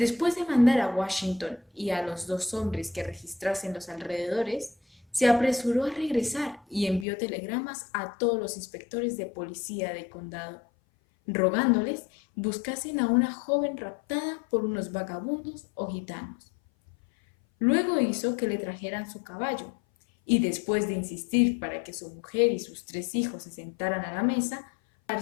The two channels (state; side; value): drops out; right; at 7.1 s